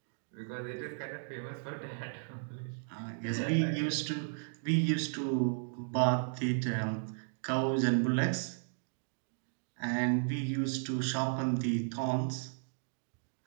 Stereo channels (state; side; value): silent; left; digital silence